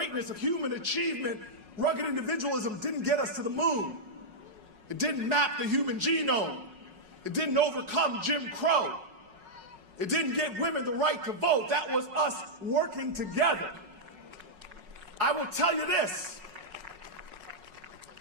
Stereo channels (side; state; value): left; late; 4.8 ms